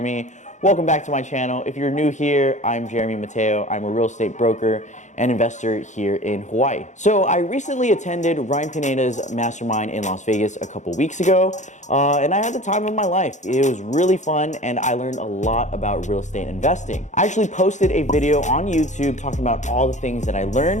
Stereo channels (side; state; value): right; late; 0.35 ms